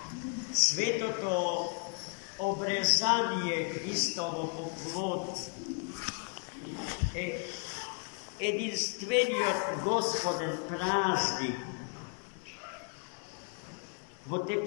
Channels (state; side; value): quieter; right; 38.2 dB